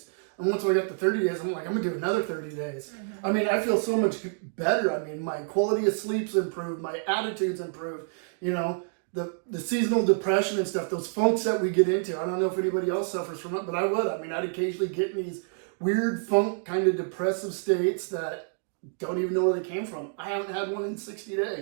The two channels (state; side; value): silent; left; digital silence